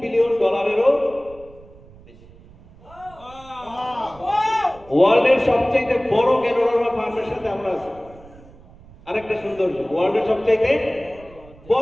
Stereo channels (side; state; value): right; noise; rumble, 23 dB below the sound